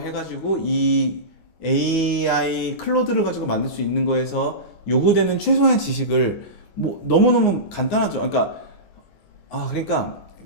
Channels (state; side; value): late; right; 25 ms